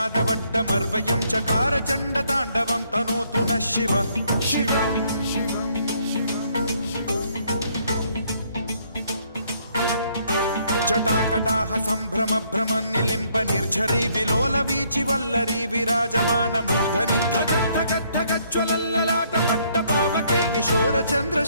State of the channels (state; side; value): inverted; both; correlation -0.68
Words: चकार चण्डताण्डवं तनोतु नः शिव शिव जटाकटाह सम्भ्रम भ्रम निलिम्ब निर्झरी विलोल वीचि वल्लरी विराजमान मूर्धनि धगद्धगद्धगज्ज्वलल्ललाट पट्ट पावके किशोर